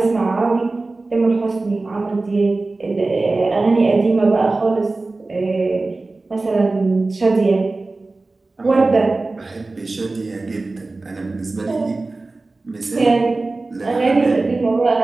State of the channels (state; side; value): quieter; left; 3.3 dB